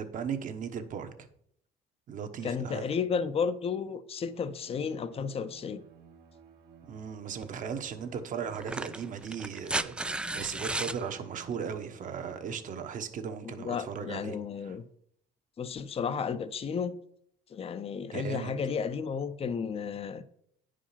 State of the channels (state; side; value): normal; both; correlation 0.40